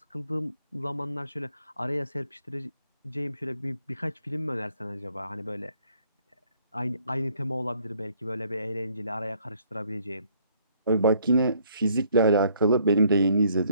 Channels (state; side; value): inverted; both; correlation -0.65